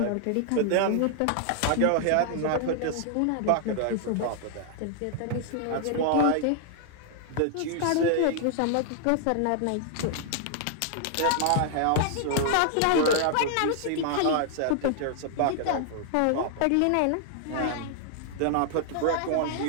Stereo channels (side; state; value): both; different; correlation 0.00